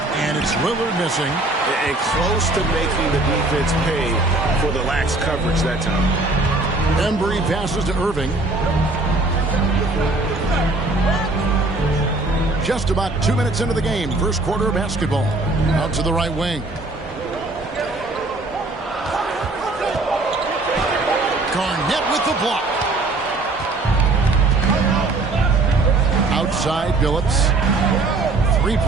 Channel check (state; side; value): quieter; left; 3.1 dB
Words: it's Lillard missing. And close to making the defense pay for the lax coverage that time. Embry passes to Irving. Just about 2 minutes into the game. First quarter of basketball. Out to the right wing. Garnett with the block. Outside, Billups.